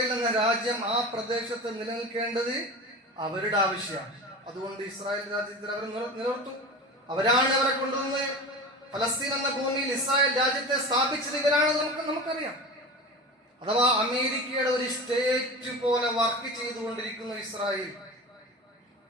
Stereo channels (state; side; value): normal; both; correlation 0.31